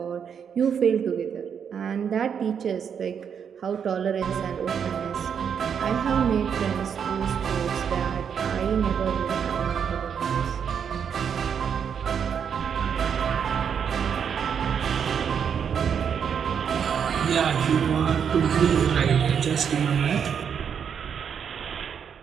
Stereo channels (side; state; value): left; quieter; 7.5 dB